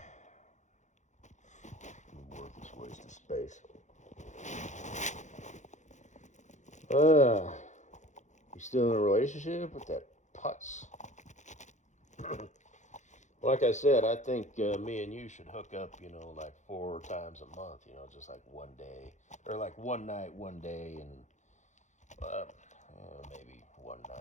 Worthless waste of space. You still in a relationship with that putz? Like I said, I think me and you should hook up, you know, like 4 times a month, you know, just like one day. Or like one night, one day, and maybe one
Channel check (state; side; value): late; right; 0.35 ms